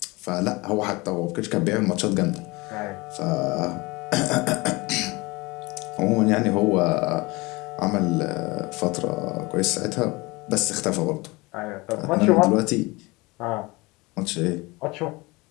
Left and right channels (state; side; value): quieter; right; 23.9 dB